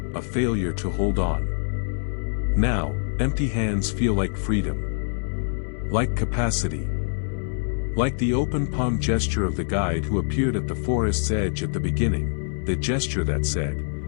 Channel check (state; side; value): silent; right; digital silence